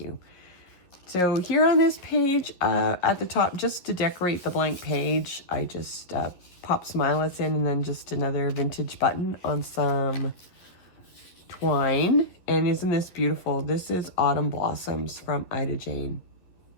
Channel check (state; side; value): late; right; 11 ms